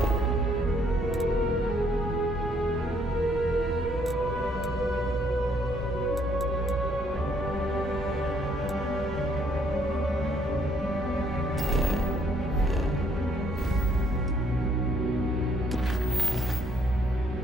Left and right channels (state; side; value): normal; both; correlation 0.67